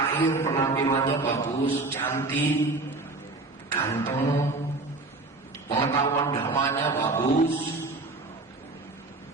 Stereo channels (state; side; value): quieter; left; 3.3 dB